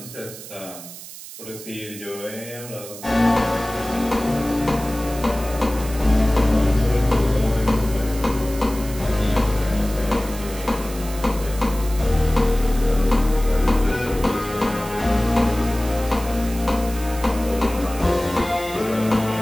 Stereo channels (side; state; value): right; noise; hiss, 14 dB below the sound